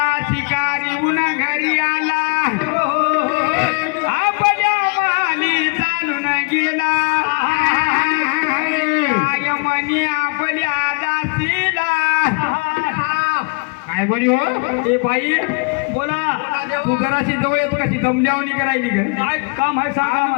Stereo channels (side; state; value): right; quieter; 32.4 dB